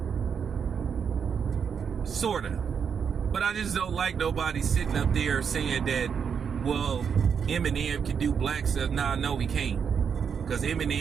Sorta. But I just don't like nobody sitting up there saying that, well, Eminem can do black stuff. Nah, no, he can't. Because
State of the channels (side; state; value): left; quieter; 6.9 dB